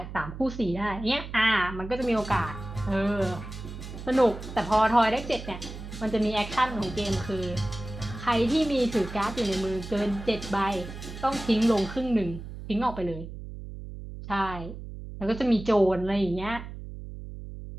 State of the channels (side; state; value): right; noise; hum, 11 dB below the sound